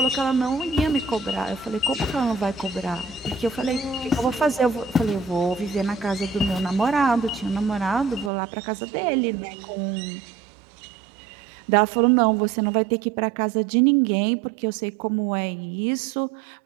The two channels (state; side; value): drops out; left; at 8.3 s